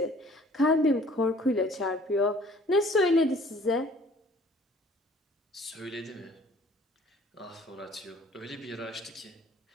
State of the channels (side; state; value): both; normal; correlation 0.54